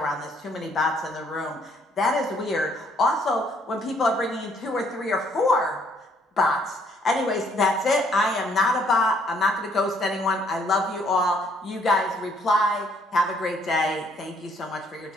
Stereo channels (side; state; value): both; normal; correlation 0.66